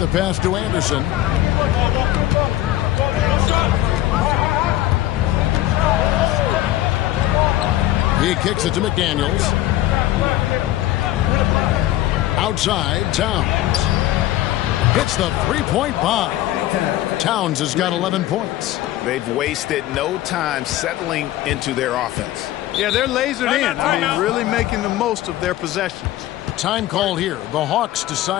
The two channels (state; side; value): quieter; right; 14.6 dB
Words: pass to Anderson. He kicks it to McDaniels. Outside, Towns. Hits the three-point bomb. Towns has got 11 points. They've wasted no time settling into their offense. Yeah, they're lasered in. I mean, really making the most of their possessions. Time called here. The Hawks